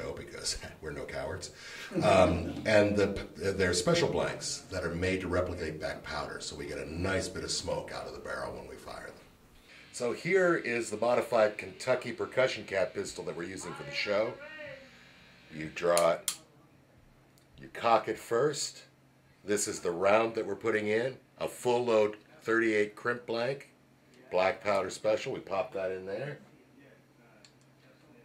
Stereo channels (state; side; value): identical; both; correlation 1.00